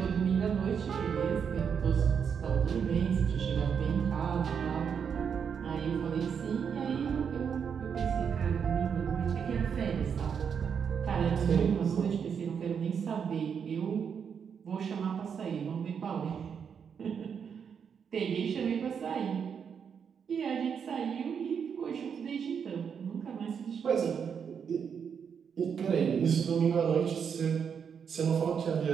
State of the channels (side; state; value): left; quieter; 7.0 dB